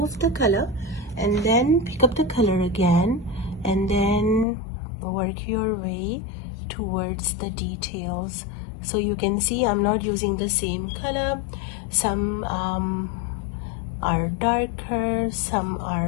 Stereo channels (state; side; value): drops out; right; at 4.5 s